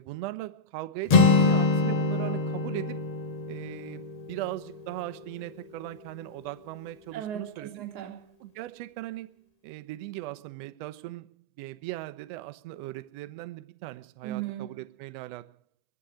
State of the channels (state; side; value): late; right; 1.8 ms